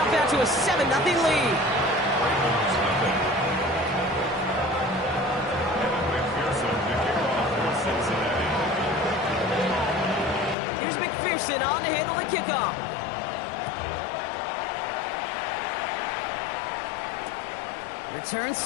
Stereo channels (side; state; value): right; drops out; at 10.6 s